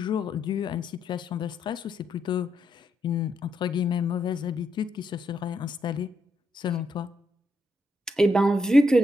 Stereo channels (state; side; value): normal; both; correlation 0.80